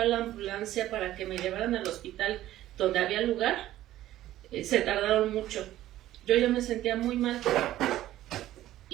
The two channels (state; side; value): quieter; left; 14.1 dB